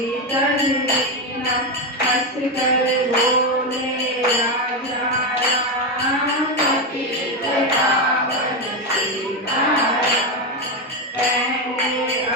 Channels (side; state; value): both; normal; correlation 0.10